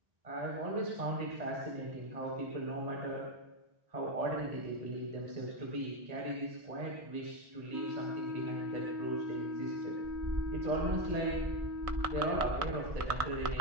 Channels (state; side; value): late; left; 1.6 ms